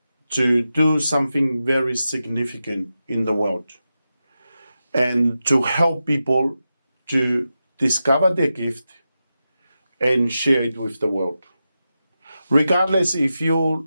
to do something very significant in the world and to help people to discover their gift and share it with the world. Regardless if you're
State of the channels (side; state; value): both; inverted; correlation -0.90